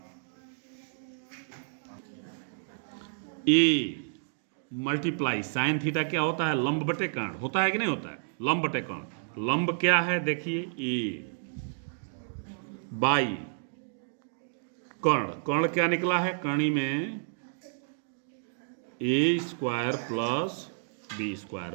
ए मल्टीप्लाई साइन थीटा क्या होता है? लंब बटे कर्ण होता है कि नहीं होता है? लंब बटे कर्ण। लंब क्या है देखिए ए बाई कर्ण, कर्ण क्या निकला है? कर्णी में A square plus B square,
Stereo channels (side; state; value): left; silent; digital silence